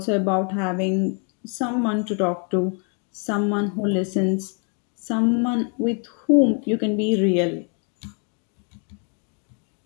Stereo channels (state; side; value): quieter; right; 39.2 dB